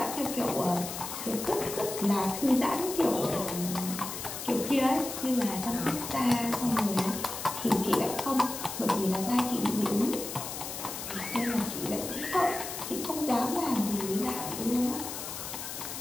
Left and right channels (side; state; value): left; noise; hiss, 7 dB below the sound